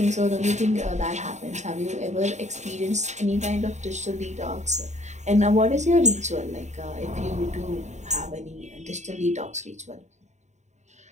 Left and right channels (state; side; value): late; left; 0.34 ms